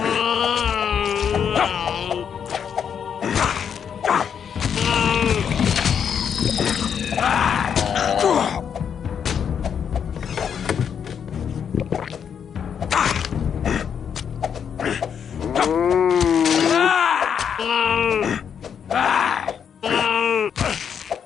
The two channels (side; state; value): right; quieter; 7.7 dB